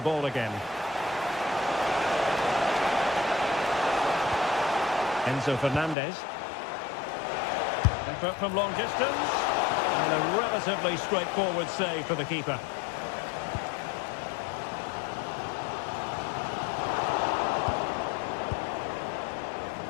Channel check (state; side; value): drops out; right; at 6.0 s